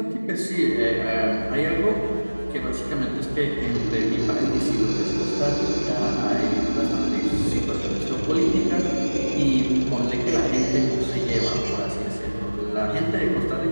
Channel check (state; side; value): inverted; both; correlation -1.00